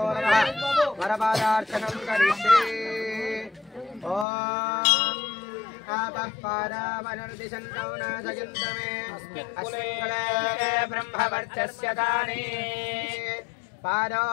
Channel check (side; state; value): right; drops out; at 4.2 s